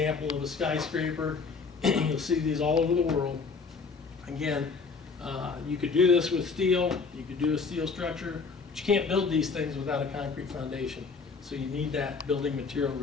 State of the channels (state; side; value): quieter; right; 4.8 dB